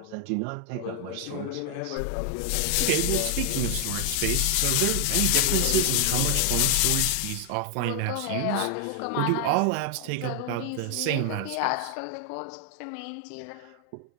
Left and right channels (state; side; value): different; both; correlation 0.00